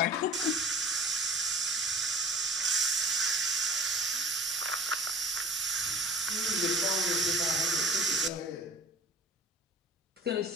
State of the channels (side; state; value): both; normal; correlation 0.43